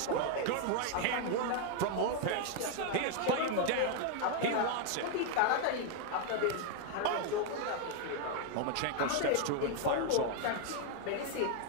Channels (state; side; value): different; both; correlation 0.00